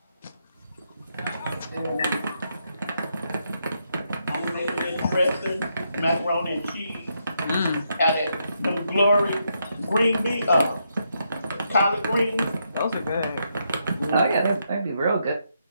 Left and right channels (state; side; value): inverted; both; correlation -0.79